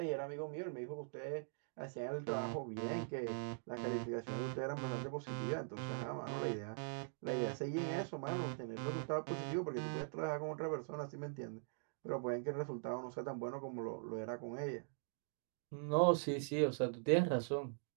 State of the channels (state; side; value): silent; left; digital silence